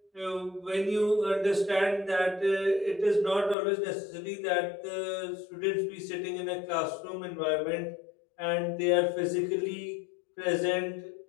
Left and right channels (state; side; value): drops out; right; at 3.6 s